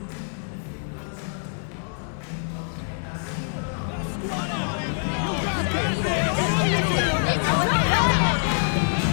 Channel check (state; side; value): silent; right; 62 dB below the other